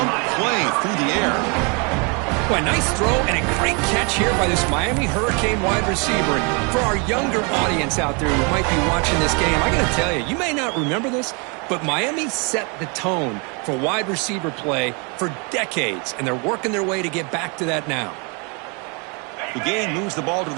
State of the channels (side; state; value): left; quieter; 32.9 dB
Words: play through the air. Well, a nice throw and a great catch here by this Miami Hurricane wide receiver. And for our younger audience out there who might be watching this game, I got to tell you, you may not remember this, but Miami set the tone for wide receiver play for decades, and they're working their way to get back to that now. The game moves the ball to